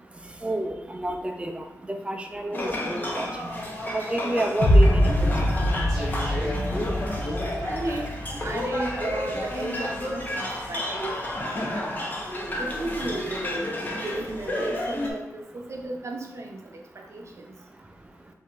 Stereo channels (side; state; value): both; normal; correlation 0.85